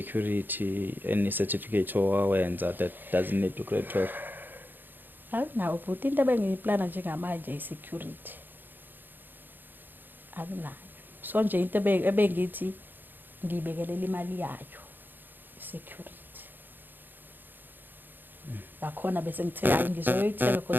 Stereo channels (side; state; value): left; late; 0.092 ms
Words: any certificate owenza that doesn't need to grade 12? Akunawo but into bengiyiplana njengamanje i-security akunayo. So nje into ebengithi ngibekelela imali yayo i-security. Lakhona bese ngithe hayi ngizoyithenga